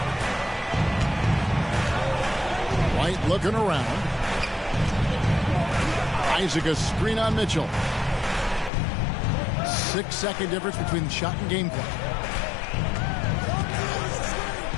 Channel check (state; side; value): drops out; right; at 8.7 s